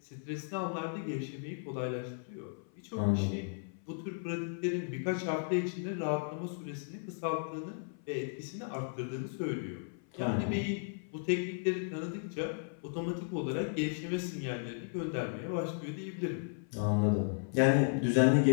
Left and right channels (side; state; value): right; silent; 54 dB below the other